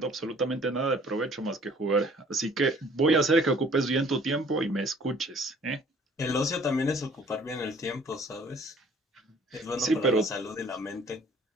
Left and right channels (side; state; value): both; normal; correlation 0.55